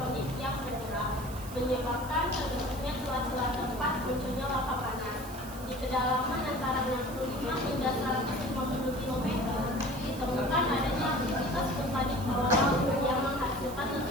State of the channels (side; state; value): right; noise; hiss, 16 dB below the sound